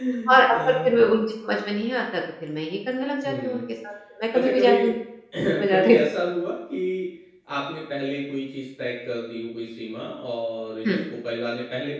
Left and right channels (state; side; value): identical; both; correlation 1.00